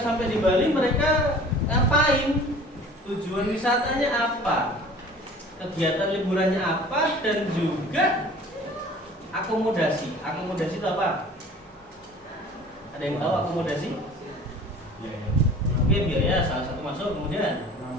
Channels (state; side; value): normal; both; correlation 0.46